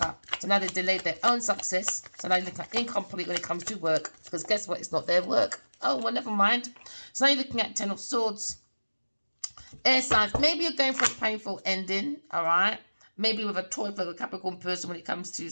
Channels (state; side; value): inverted; both; correlation -1.00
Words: So now they delayed their own success. So now you look at incomplete when it comes to work, because guess what? It's not their work. Oh, well, never mind. So now you're looking at 10 of Swords. Air signs, maybe you're going for a painful ending, all right? Maybe with a Taurus, Virgo, Capricorn person when it comes to